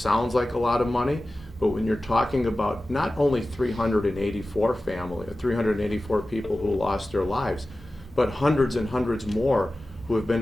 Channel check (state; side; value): normal; both; correlation 0.95